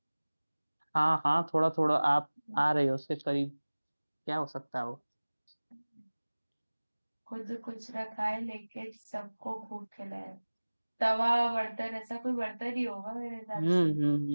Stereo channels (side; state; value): both; inverted; correlation -1.00